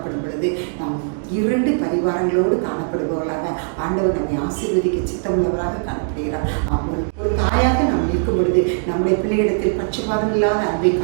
பொழுது நாம் 2 பரிவார வரங்களோடு காணப்படுபவர்களாக ஆண்டவர் நம்மை ஆசீர்வதிக்க சித்தமுள்ளவராக காணப்படுகிறார். ஒரு தாயாக நாம் இருக்கும் பொழுது நம்முடைய பிள்ளையிடத்தில் பட்சபாதம் இல்லாத அன்பை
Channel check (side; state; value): left; silent; digital silence